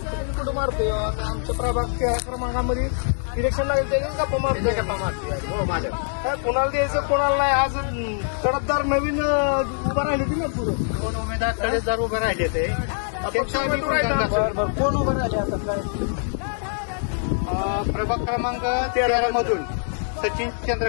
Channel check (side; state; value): right; silent; digital silence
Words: कुठं मारतोय आता? आमच्या प्रभाग क्रमांकामध्ये इलेक्शन लागेल ते गप्पा मारतोय. गप्पा मारतोय हो माझ्या. काय कोणाला द्यायचं कोणाला नाही? आज कडकदार नवीन उभं राहिले ते ना पुढं. 2 उमेदवार कडकदार उभे राहिले ते. कोण उभं राहिले आता? काय प्रभाग क्रमांक 13 मधून सचिन